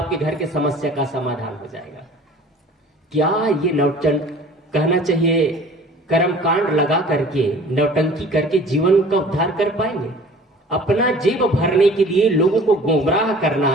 घर के समस्या का समाधान हो जाएगा। क्या ये कहना चाहिए कर्म कांड लगा करके नौटंकी करके जीवन का उद्धार कर पाएंगे? अपना जेब भरने के लिए लोगों को गुमराह करना,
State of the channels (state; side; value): normal; both; correlation 0.47